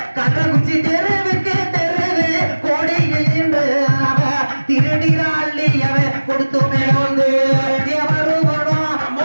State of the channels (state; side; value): inverted; both; correlation -1.00